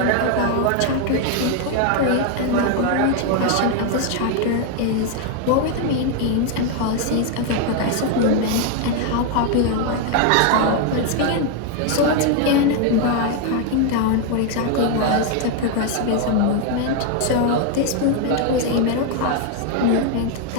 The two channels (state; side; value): different; both; correlation 0.01